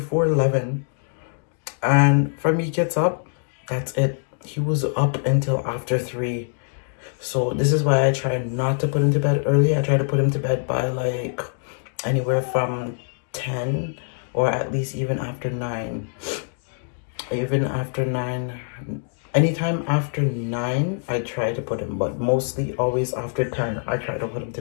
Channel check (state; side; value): silent; right; digital silence